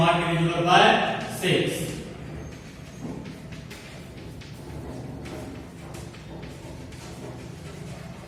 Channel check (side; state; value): both; identical; correlation 1.00